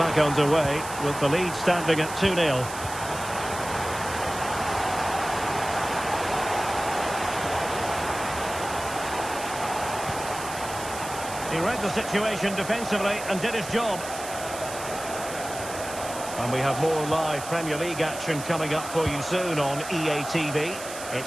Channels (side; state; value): right; noise; hiss, 11 dB below the sound